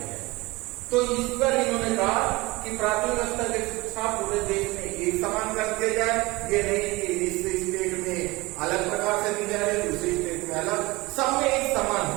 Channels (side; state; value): left; quieter; 22.5 dB